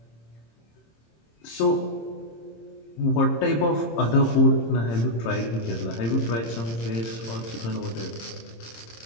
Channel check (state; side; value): late; right; 26 ms